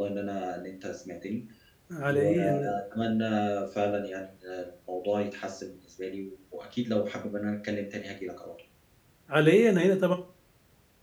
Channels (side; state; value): both; identical; correlation 1.00